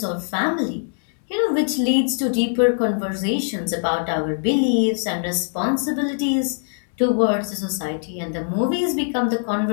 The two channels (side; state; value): right; silent; 64 dB below the other